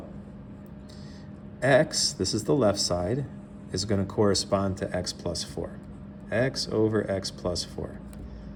x, this is the left side, is going to correspond to x plus 4. X over x plus 4.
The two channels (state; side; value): identical; both; correlation 1.00